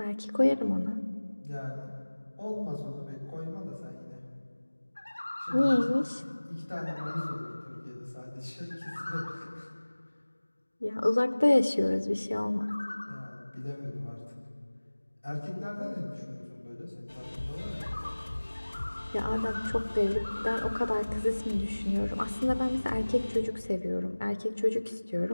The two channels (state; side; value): inverted; both; correlation -1.00